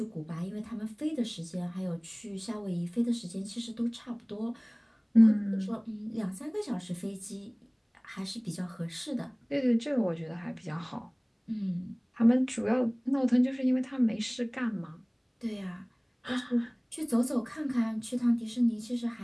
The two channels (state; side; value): identical; both; correlation 1.00